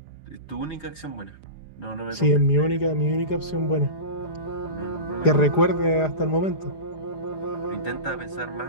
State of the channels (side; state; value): right; late; 4.9 ms